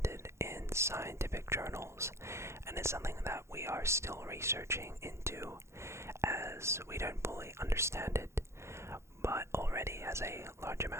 in scientific journals and is something that we are still researching into as we don't fully understand it, but already has a large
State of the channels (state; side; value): late; left; 0.13 ms